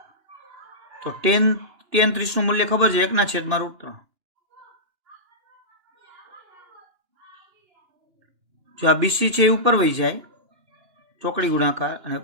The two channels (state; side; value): late; left; 2.9 ms